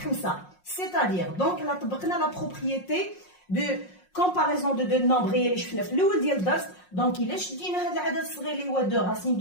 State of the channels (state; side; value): late; right; 5.5 ms